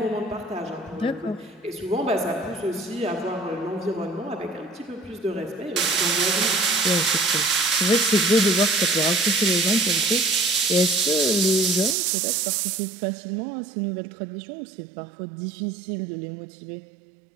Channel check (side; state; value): left; drops out; at 12.0 s